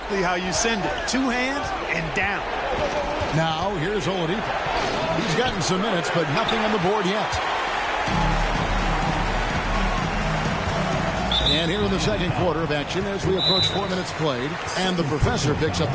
how you send it. 2 hands and down. Now, here's Oladipo. He's gotten some minutes, but nothing on the board yet. And here in the second quarter of action as we approach 4 minutes played, and the professor picks up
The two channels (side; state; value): both; identical; correlation 1.00